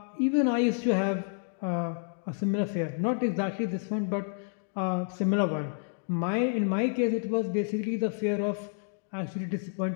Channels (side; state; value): right; silent; 58 dB below the other